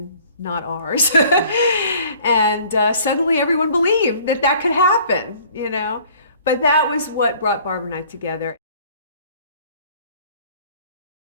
not ours. And suddenly everyone believed that could happen, But that was what brought Barbara and I together.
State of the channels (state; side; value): inverted; both; correlation -0.54